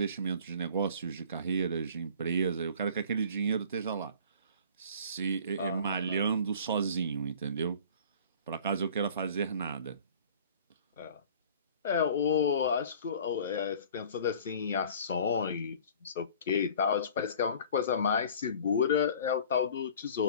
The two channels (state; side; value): inverted; both; correlation -0.46